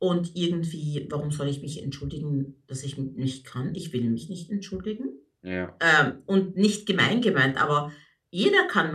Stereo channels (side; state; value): both; identical; correlation 1.00